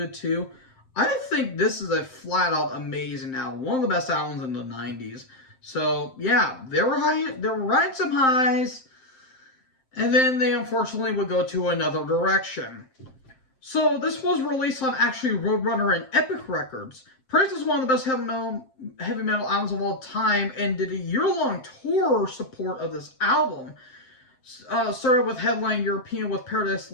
too. I think this is a flat out amazing album. One of the best albums in the 90s. So yeah, they were riding some highs, and then they unfortunately would go to another direction. So this was released on actually Roadrunner and Epic Records. Praised as one of the best heavy metal albums of all time, and did a year-long tour support of this album. Started with headline European with Paradise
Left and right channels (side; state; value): right; late; 7.7 ms